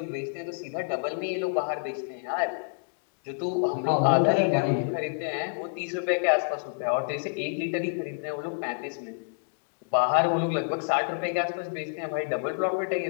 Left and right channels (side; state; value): right; silent; digital silence